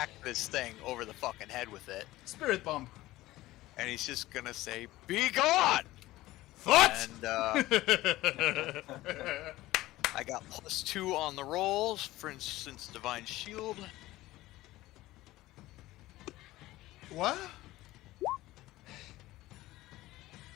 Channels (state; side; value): quieter; right; 17.2 dB